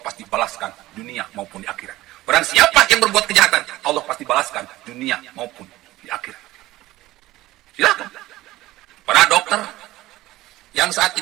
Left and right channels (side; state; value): left; quieter; 17.0 dB